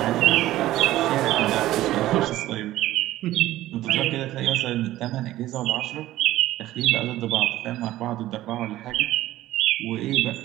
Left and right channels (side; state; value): left; quieter; 15.1 dB